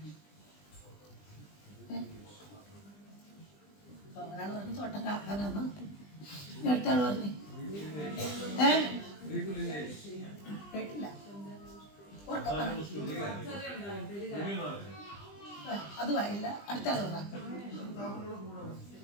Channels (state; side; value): late; right; 20 ms